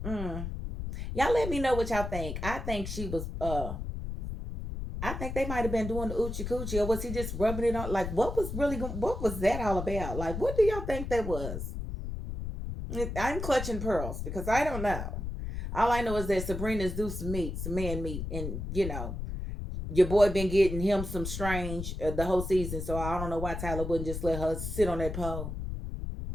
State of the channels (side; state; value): left; noise; rumble, 5 dB below the sound